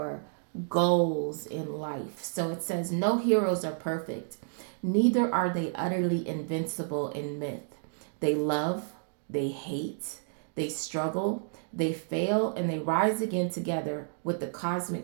goals in life. So it says, no heroes are perfect, neither are they utterly invincible in myth. They love, they hate, they struggle, they fail, and they rise again together with the cosmic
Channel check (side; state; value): left; silent; digital silence